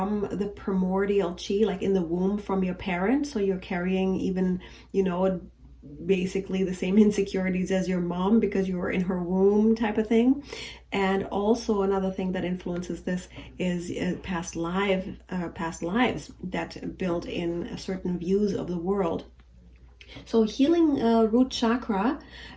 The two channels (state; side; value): identical; both; correlation 1.00